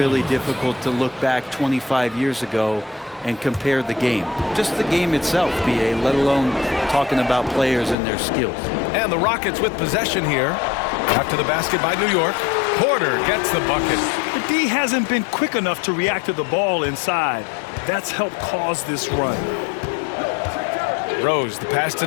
difficult to look back 25 years ago and compare the game. Just the game itself, B.A., let alone talking about players and their skills. And the Rockets with possession here. After the basket by New York. Porter gets the bucket. The D hasn't been quick enough to react to the ball inside. That's helped cause this run. Rose, the pass to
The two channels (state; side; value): drops out; right; at 8.0 s